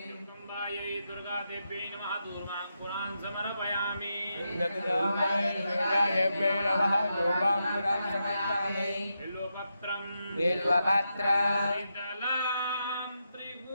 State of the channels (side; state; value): both; inverted; correlation -0.85